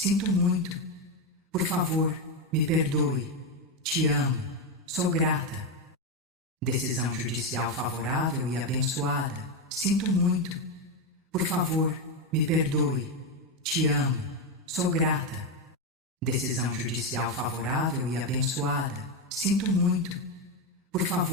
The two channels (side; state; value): both; normal; correlation 0.08